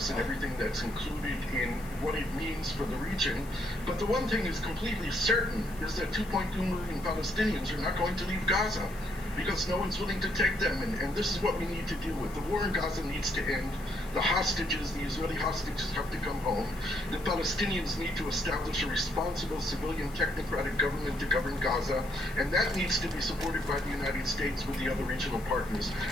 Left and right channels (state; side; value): noise; left; hiss, 21 dB below the sound